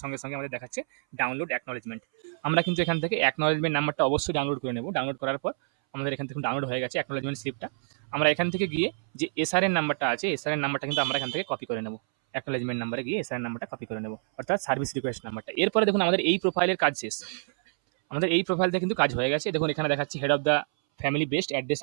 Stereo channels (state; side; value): silent; left; 60 dB below the other